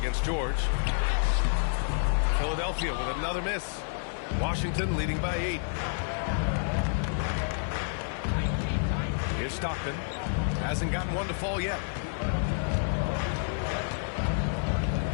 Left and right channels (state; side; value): silent; right; 58 dB below the other